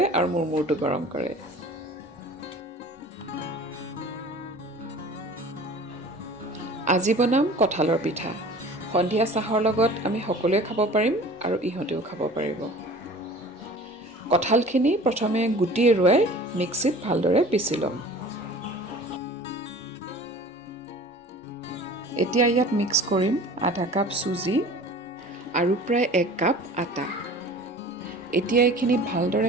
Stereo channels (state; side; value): normal; both; correlation 0.43